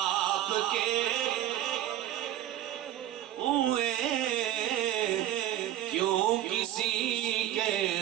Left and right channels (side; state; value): left; quieter; 12.7 dB